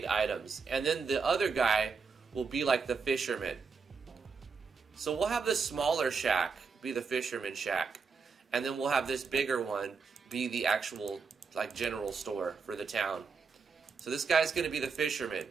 items, and then the other guy will be like the fisherman. So we'll have this smaller shack be the fisherman shack, and then we'll have this bigger one be the actual like general store for the town. So this guy's going to be the fisherman,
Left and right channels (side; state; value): left; quieter; 5.1 dB